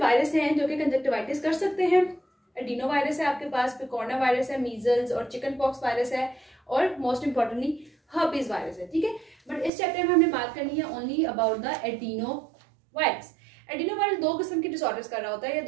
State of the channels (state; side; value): drops out; left; at 9.7 s